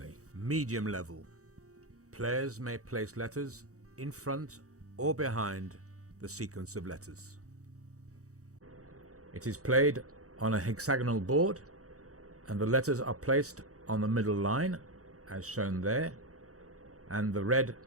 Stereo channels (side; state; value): left; late; 0.65 ms